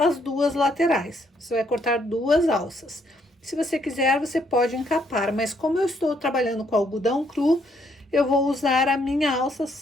2 laterais. Você vai cortar 2 alças. Se você quiser, você pode encapar, mas como eu estou trabalhando com algodão cru, eu vou usar a minha alça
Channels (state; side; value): normal; both; correlation 0.71